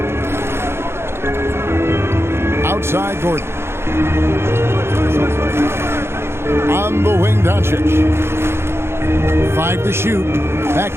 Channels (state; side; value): late; left; 0.12 ms